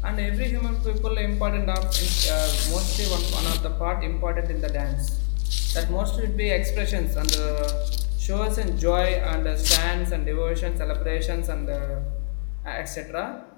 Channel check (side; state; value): right; silent; digital silence